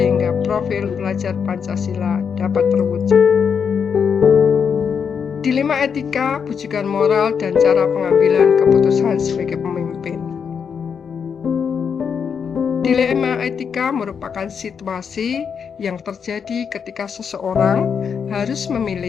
profil pelajar Pancasila dapat terwujud. Dilema etika, bujukan moral, dan cara pengambilan keputusan sebagai pemimpin. Dilema etika merupakan situasi yang terjadi ketika seseorang harus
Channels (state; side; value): quieter; right; 6.7 dB